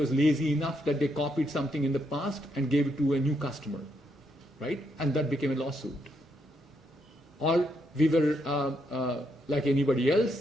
lazy enough that they copied something in the past and gave it to a new customer, right? And that became a lawsuit. Or we were like anybody else,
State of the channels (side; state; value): both; normal; correlation 0.77